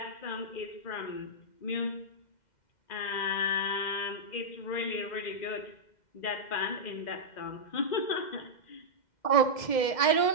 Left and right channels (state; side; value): late; right; 2.1 ms